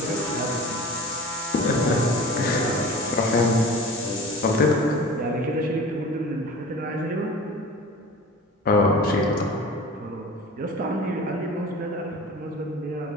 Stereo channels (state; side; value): normal; both; correlation 0.38